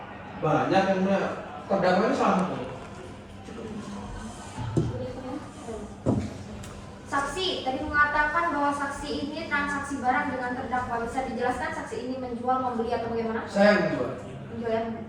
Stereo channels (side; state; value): both; identical; correlation 1.00